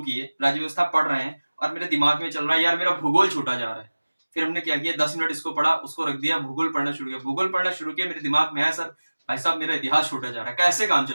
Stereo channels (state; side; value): inverted; both; correlation -1.00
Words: किए, राज्य व्यवस्था पढ़ रहे हैं और मेरे दिमाग में चल रहा है यार मेरा भूगोल छूटा जा रहा है। फिर हमने क्या किया, 10 मिनट इसको पढ़ा, उसको रख दिया, भूगोल पढ़ना शुरू किया। भूगोल पढ़ना शुरू किया, मेरे दिमाग में आया सर भाई साहब मेरा इतिहास छूटा जा रहा है, कैसे काम